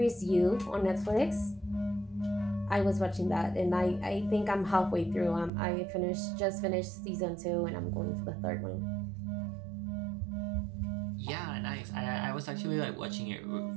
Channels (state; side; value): drops out; left; at 5.5 s